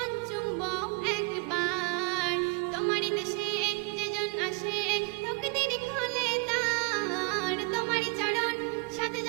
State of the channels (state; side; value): quieter; left; 31.2 dB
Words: চুম্ব একবার। তোমারই দেশে যেজন আসে, তকদির খোলে তার। তোমারই চরণ সাথে